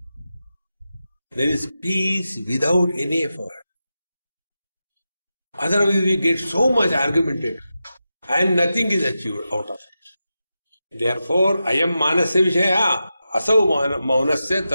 There is peace without any effort. Otherwise we get so much argumentative and nothing is achieved out of it. Therefore, ayam manasya vishaya asau maunasya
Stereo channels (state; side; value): inverted; both; correlation -0.91